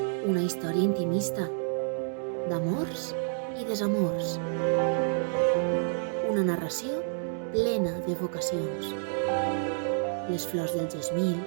Una història intimista, d'amors i desamors. Una narració plena de vocacions. Les flors del gesmil,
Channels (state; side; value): silent; left; digital silence